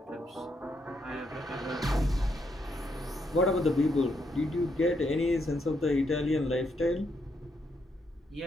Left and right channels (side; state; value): both; normal; correlation 0.77